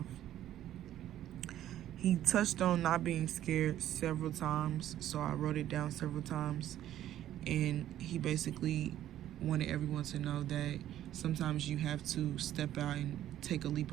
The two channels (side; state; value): left; quieter; 12.3 dB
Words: He touched on not being scared several times, so I wrote it down several times. And he basically wanted everyone to know that sometimes you have to step out and take a leap